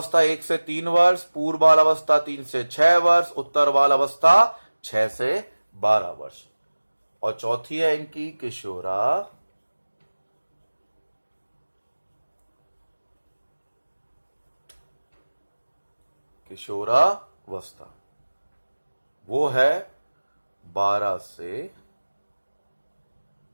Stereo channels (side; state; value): both; inverted; correlation -1.00